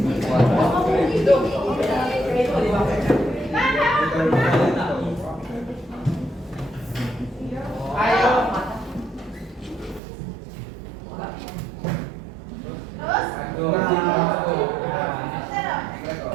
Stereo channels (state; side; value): drops out; left; at 10.0 s